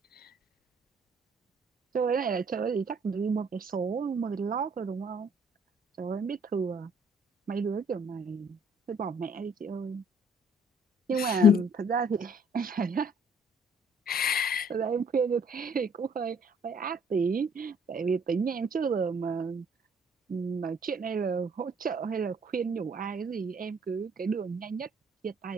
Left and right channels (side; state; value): both; normal; correlation 0.60